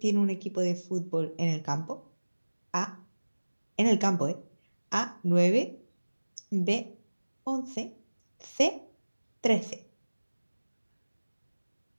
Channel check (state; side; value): inverted; both; correlation -1.00